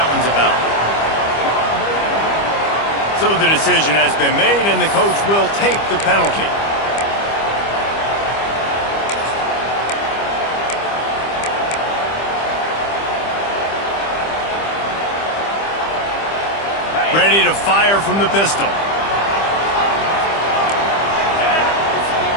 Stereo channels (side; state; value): right; late; 25 ms